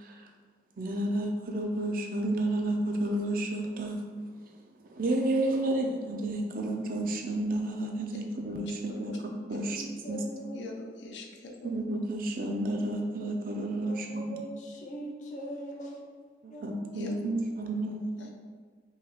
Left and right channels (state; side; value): normal; both; correlation 0.69